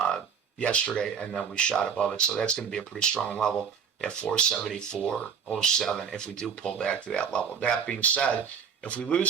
yesterday, and then we shot above it. So that's going to be a pretty strong level at 474.07 if we do pull back to that level. That being said, if we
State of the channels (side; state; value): left; quieter; 6.9 dB